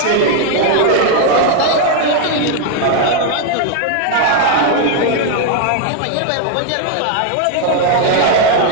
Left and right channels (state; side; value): different; both; correlation 0.00